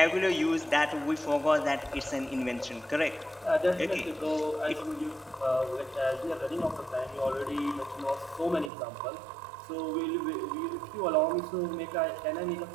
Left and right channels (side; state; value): left; drops out; at 8.7 s